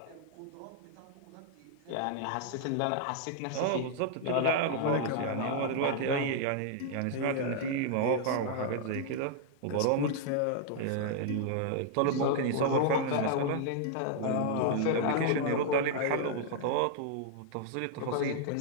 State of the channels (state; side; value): different; both; correlation 0.00